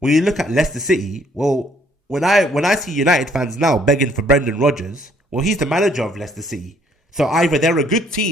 you look at Leicester City, well, when I see United fans now begging for Brendan Rodgers, well, he's the manager of Leicester City. So either they're a good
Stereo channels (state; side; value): normal; both; correlation 0.64